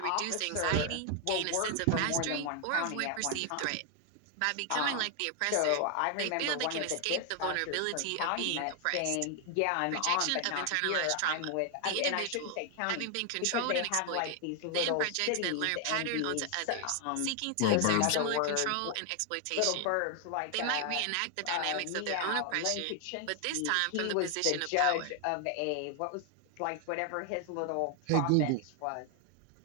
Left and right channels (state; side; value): different; both; correlation 0.00